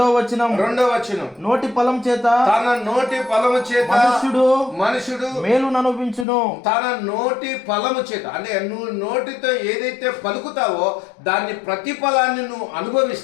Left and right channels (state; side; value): drops out; right; at 6.2 s